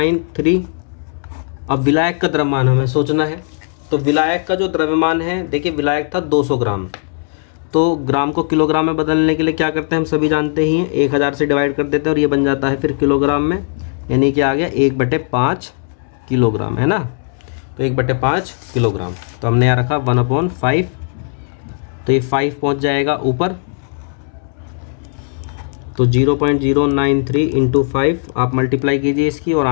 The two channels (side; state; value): right; silent; 64 dB below the other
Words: अब विलायक का द्रव्यमान हमें सोचना है। तो विलायक का जो द्रव्यमान है, देखिए विलायक था 200 ग्राम, तो ग्राम को किलोग्राम में बदलने के लिए क्या करते हैं, हम सभी जानते ही हैं, 1000 से डिवाइड कर देते हैं और ये बन जाता है फिर किलोग्राम में। यानी कि आ गया 1/5 किलोग्राम, है ना। तो 1/5 किलोग्राम। तो हमने यहाँ रखा 1/5, तो ये 5 पहुँच जाएगा ऊपर। तो 0.093 इंटू 5 आप मल्टीप्लाई कीजिए इसकी, और